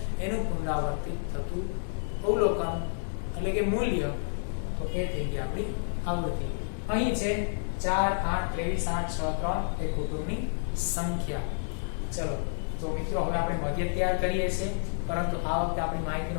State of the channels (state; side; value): silent; right; digital silence